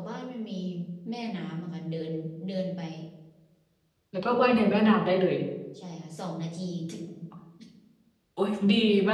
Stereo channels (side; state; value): both; identical; correlation 1.00